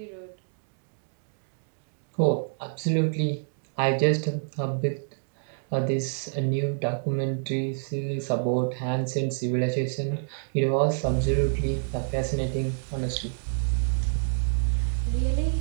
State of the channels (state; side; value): silent; left; digital silence